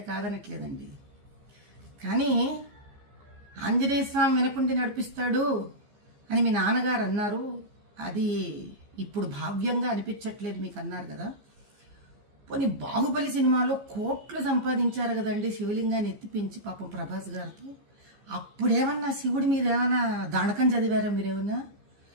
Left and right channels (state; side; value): late; left; 15 ms